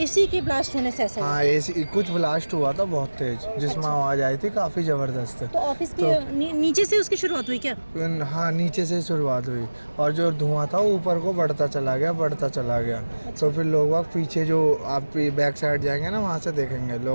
एसी के ब्लास्ट होने से ऐसा हुआ। हाँ, एसी कुछ ब्लास्ट हुआ था बहुत तेज, जिसमें आवाज़ आई थी काफ़ी ज़बरदस्त। तो ऑफिस के नीचे से उसकी शुरुआत हुई क्या? हाँ, नीचे से शुरुआत हुई और जो धुआं था वो ऊपर को बढ़ता चला गया। तो फिर लोग बाग पीछे, जो आप बैक साइड जाएंगे ना, वहाँ से देखेंगे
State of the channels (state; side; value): inverted; both; correlation -1.00